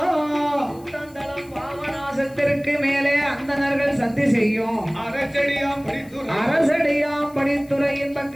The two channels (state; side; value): noise; left; hiss, 26 dB below the sound